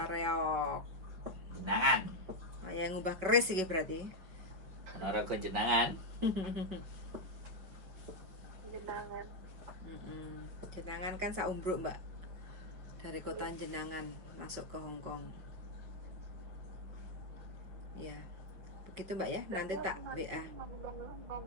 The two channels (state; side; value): late; left; 5.7 ms